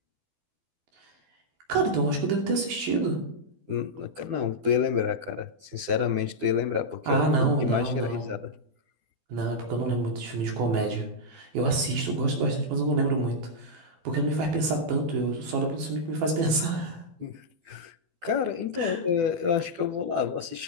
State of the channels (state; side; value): late; left; 12 ms